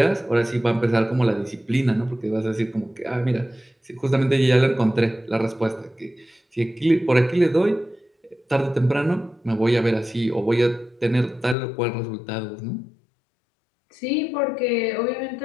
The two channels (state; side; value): drops out; right; at 11.6 s